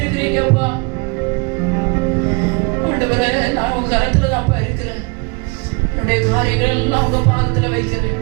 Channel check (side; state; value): left; quieter; 29.6 dB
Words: அப்பா. ஆண்டவரே, நான் உங்க கரத்துல தான்ப்பா இருக்கிறேன். என்னுடைய காரியங்கள் எல்லாம் உங்க பாதத்துல வைக்கிறேன்.